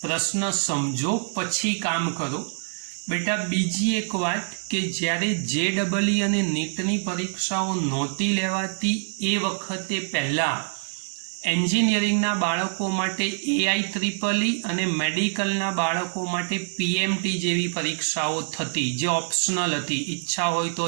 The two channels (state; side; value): silent; left; digital silence